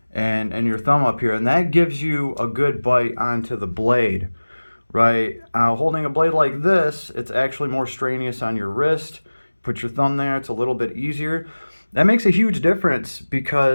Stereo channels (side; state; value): both; inverted; correlation -1.00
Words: and your thumb up here, and that gives you a good bite onto the blade, right? Holding a blade like this, it's actually more strenuous on your wrist. Put your thumb there, it's a little bit easier. That makes a huge difference,